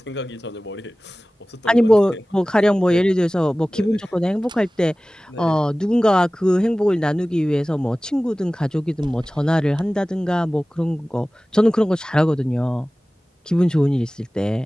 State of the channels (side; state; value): both; normal; correlation 0.98